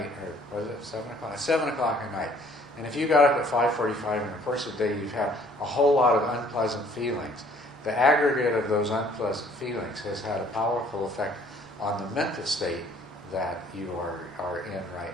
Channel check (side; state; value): both; normal; correlation 0.58